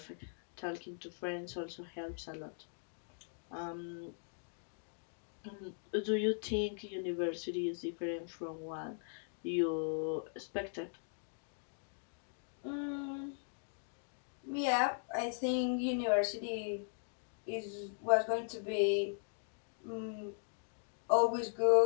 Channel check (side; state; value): right; silent; digital silence